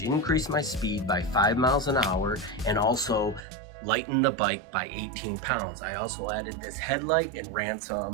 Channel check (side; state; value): left; drops out; at 3.4 s